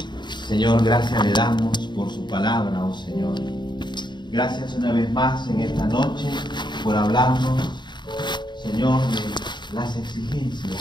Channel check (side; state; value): right; late; 0.22 ms